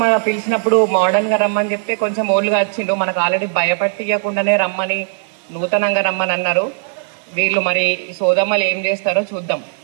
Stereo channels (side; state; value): left; silent; digital silence